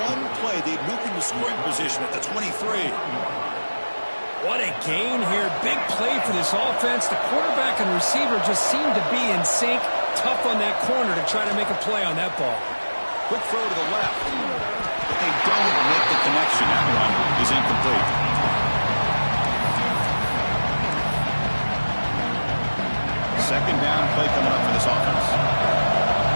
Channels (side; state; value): both; inverted; correlation -1.00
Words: one play, they moved into scoring position at the 23. What a gain here. Big play for this offense. The quarterback and receiver just seem to be in sync. Tough on that corner to try to make a play on that ball. Quick throw to the left. But they don't make the connection. That one is incomplete. Second down play coming up for this offense.